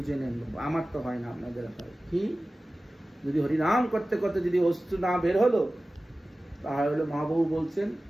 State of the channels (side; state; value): both; normal; correlation 0.96